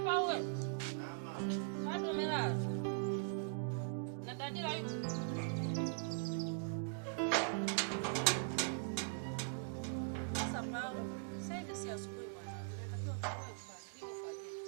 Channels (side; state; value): left; silent; digital silence